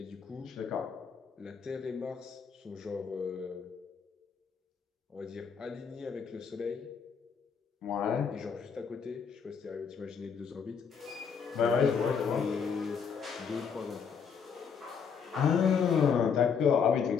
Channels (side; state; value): right; quieter; 6.5 dB